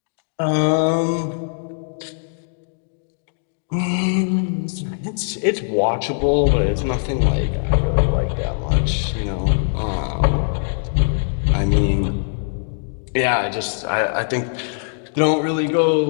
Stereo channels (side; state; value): right; silent; digital silence